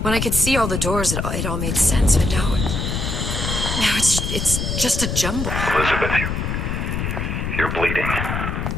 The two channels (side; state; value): left; noise; rumble, 2 dB below the sound